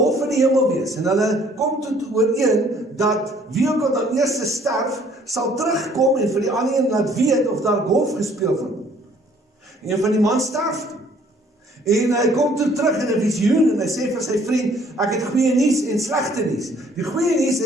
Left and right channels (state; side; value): normal; both; correlation 0.59